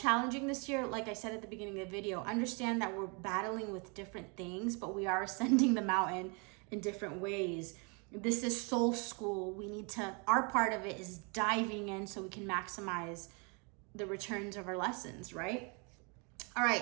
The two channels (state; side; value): quieter; left; 33.3 dB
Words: this year, like I said at the beginning of the video, understand that we're battling with different things, but we are ascending the mountain in different ways. This is soul school. We need to, our part of it is diving in so we can maximize the returns of our lessons, right? All